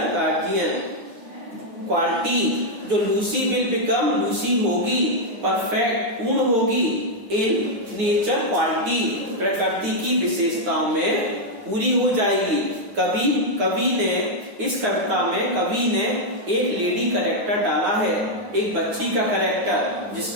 guardian quality, जो लूसी विल बिकम, लूसी होगी परफेक्ट, पूर्ण होगी इन नेचर क्वालिटी, प्रकृति की विशेषताओं में पूरी हो जाएगी। कवि ने इस कविता में कवि ने एक लेडी कैरेक्टर डाला है, एक बच्ची का कैरेक्टर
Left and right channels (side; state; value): left; late; 9.5 ms